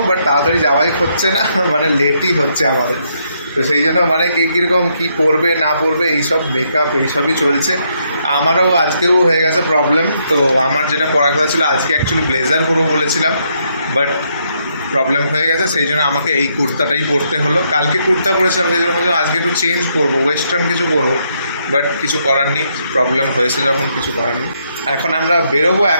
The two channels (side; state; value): both; inverted; correlation -0.75